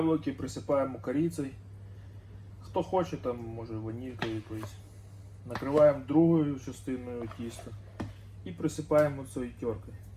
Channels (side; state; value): both; identical; correlation 1.00